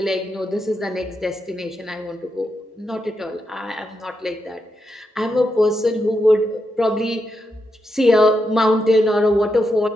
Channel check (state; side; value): normal; both; correlation 0.84